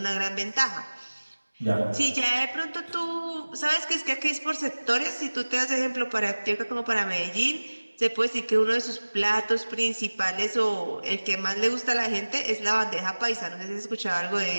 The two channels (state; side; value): inverted; both; correlation -1.00